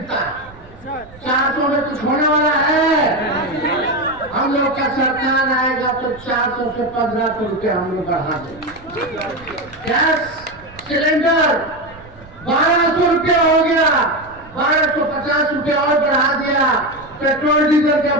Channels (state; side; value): noise; right; rumble, 22 dB below the sound